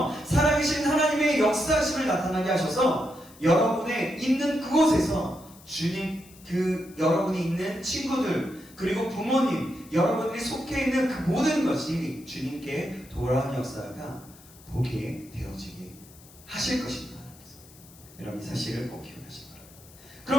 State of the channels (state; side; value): noise; left; hiss, 23 dB below the sound